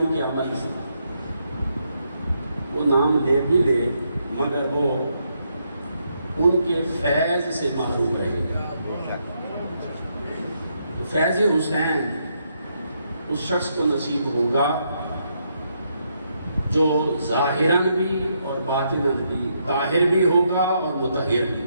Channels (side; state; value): both; inverted; correlation -0.78